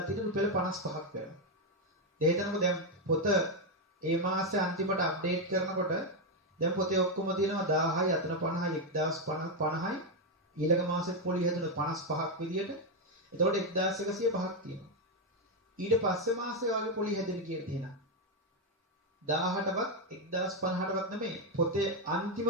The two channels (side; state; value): both; normal; correlation 0.04